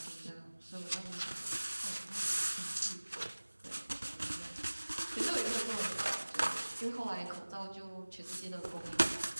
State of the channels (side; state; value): both; inverted; correlation -1.00